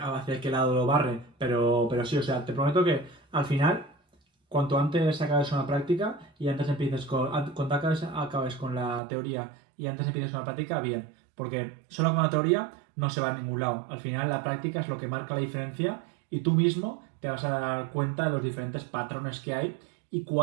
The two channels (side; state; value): left; drops out; at 9.0 s